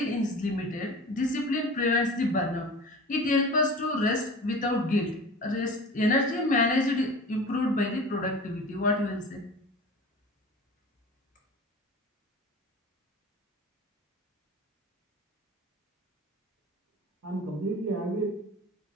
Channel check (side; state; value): both; normal; correlation 0.37